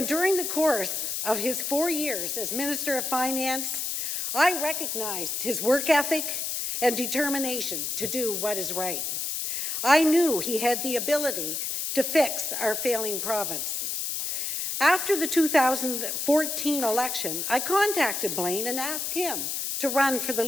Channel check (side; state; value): left; noise; hiss, 2 dB below the sound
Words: during the course of his 4 years as Minister of Finance, I recognized his work ethic and determination to do what is right. I knew he had the ability to fix our failing province. After the 2014 election, I contacted Blaine and asked him to run for the